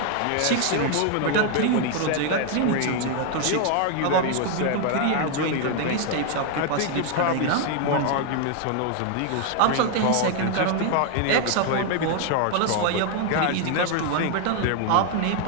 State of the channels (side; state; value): both; different; correlation 0.00